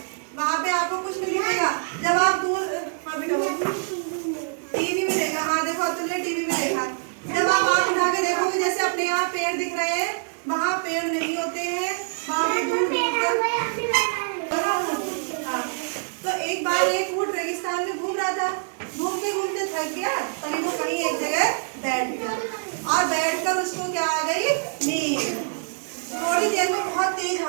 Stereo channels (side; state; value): left; silent; 56 dB below the other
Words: वहाँ पे आपको कुछ नहीं दिखेगा। जब आप दूर टीवी में देखा, हाँ देखो अब्दुल ने टीवी में देखा, जब आप आँख उठा के देखोगे जैसे अपने यहाँ पेड़ दिख रहे हैं, वहाँ पेड़ नहीं होते हैं, वहाँ पे दूर दूर तक। हाँ, तो एक बार एक ऊँट रेगिस्तान में घूम रहा था, घूमते घूमते थक गया, तभी वो कहीं एक जगह बैठ गया और बैठकर उसको क्या आ गई? नींद। थोड़ी देर में बहुत तेज